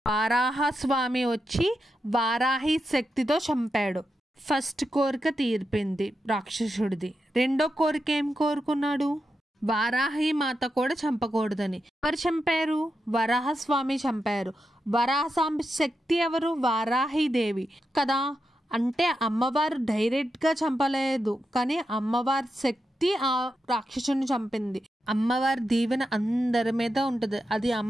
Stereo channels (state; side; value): normal; both; correlation 0.87